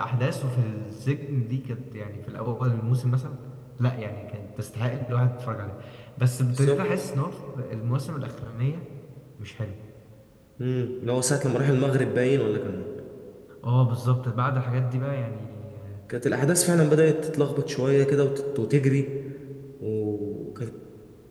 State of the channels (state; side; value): identical; both; correlation 1.00